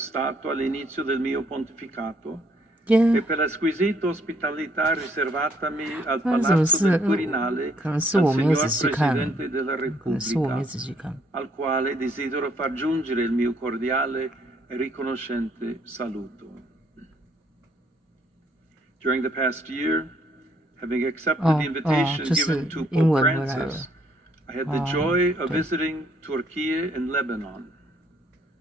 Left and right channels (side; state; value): both; normal; correlation 0.67